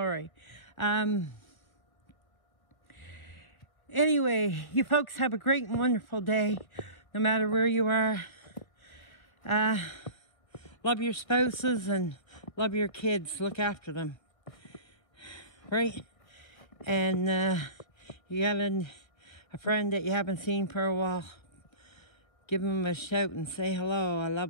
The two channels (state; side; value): late; right; 1.6 ms